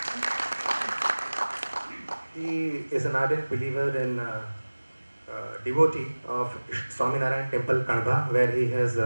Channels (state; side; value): inverted; both; correlation -1.00